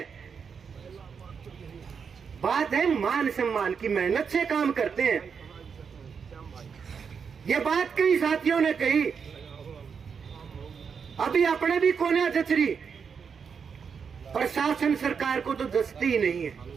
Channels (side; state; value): left; quieter; 6.3 dB